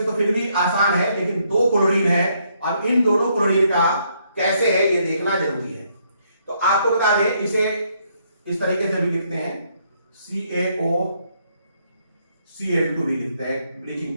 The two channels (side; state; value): both; inverted; correlation -0.72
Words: तो फिर भी आसान है, लेकिन 2 क्लोरीन है। अब इन दोनों क्लोरीन का कैसे है ये देखना जरूरी है। तो आपको बता दें, इसे इस तरीके से भी लिखते हैं, CaOCl2 भी लिखते हैं ब्लीचिंग